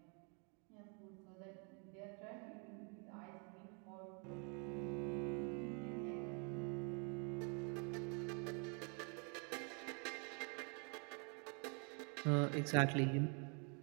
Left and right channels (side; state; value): left; quieter; 36.9 dB